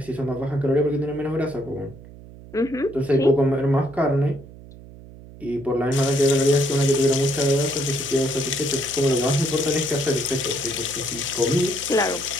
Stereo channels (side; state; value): right; noise; hum, 18 dB below the sound